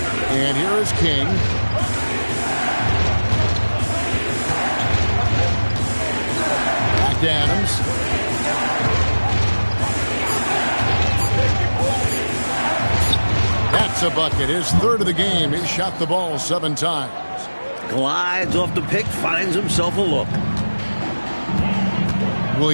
And here is King. Back to Adams. That's a bucket. His third of the game. He shot the ball 7 times. Glides off the pick, finds himself a look.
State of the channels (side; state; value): both; inverted; correlation -1.00